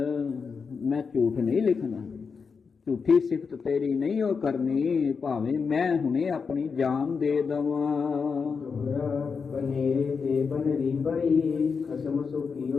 ਮੈਂ ਝੂਠ ਨਹੀਂ ਲਿਖਣਾ, ਝੂਠੀ ਸਿਫਤ ਤੇਰੀ ਨਹੀਂ ਉਹ ਕਰਨੀ, ਭਾਵੇਂ ਮੈਂ ਹੁਣੇ ਆਪਣੀ ਜਾਨ ਦੇ ਦਵਾਂ। ਦੋਹਰਾ ਬਨੇਰੇ ਤੇ ਬਨਰੀ ਪਈ, ਖਸਮ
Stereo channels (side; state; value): right; quieter; 5.5 dB